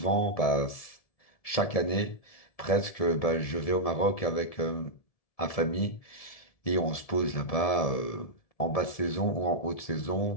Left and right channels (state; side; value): late; right; 1.7 ms